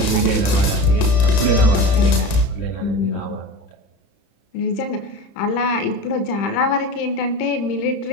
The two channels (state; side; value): late; right; 30 ms